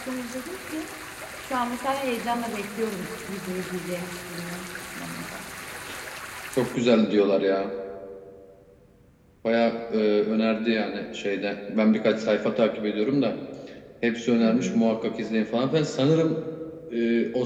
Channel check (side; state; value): both; identical; correlation 1.00